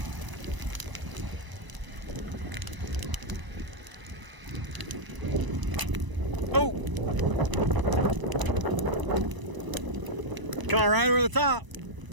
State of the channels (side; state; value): left; late; 1.0 ms